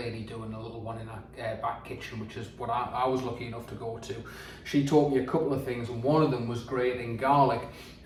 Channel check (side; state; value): both; identical; correlation 1.00